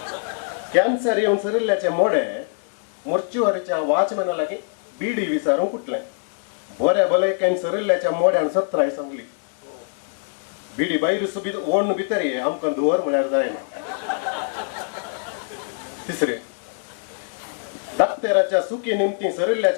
कॅन्सर येवन सरिल्ल्याचे मोडे मोर्चुवारीच्या वॉचमॅना लागीं बिडी विचारूंक उठले. बऱ्या भलायकेन सरिल्ल्याच्या मोड्यान सत्राय सांगली बिडी भायर ओडून भितर ये आमकां धुवर म्हळ्यार जायना. तिसरें दाक्तेराच्या सुकी निमती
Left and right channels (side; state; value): right; silent; digital silence